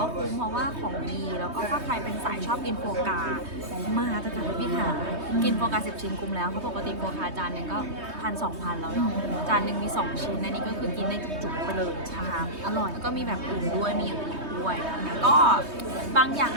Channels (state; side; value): late; left; 3.2 ms